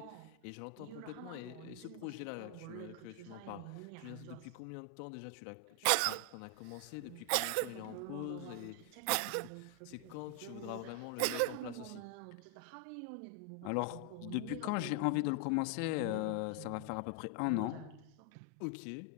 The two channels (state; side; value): different; both; correlation 0.00